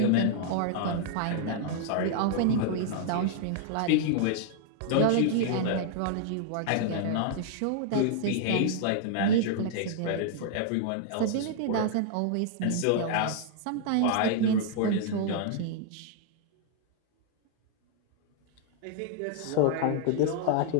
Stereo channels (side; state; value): both; different; correlation -0.01